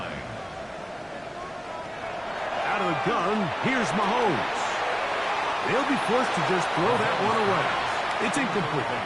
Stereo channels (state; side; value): identical; both; correlation 1.00